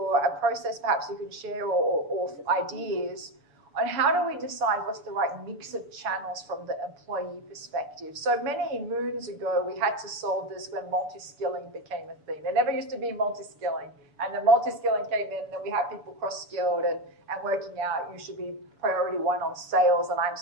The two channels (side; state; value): left; late; 7.0 ms